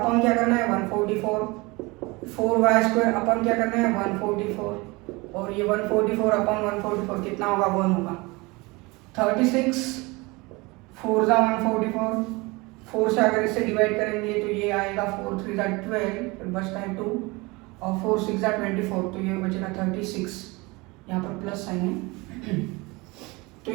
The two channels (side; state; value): left; quieter; 24.5 dB